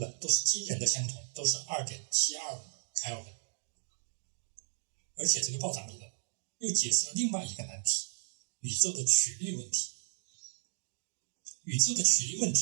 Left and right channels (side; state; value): left; silent; digital silence